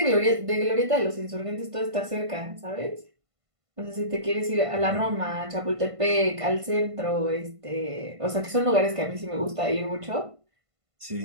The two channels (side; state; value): left; late; 1.5 ms